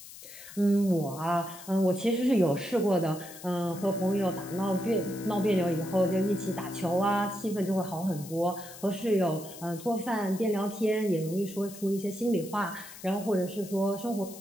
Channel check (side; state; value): left; noise; hiss, 16 dB below the sound